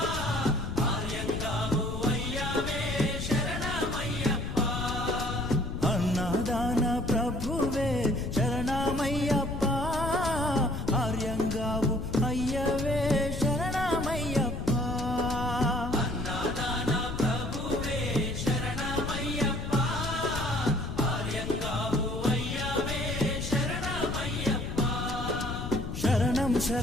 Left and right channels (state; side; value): noise; left; rumble, 5 dB below the sound